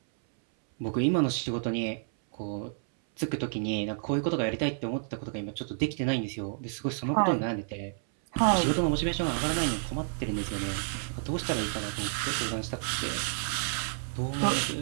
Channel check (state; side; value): silent; left; 58 dB below the other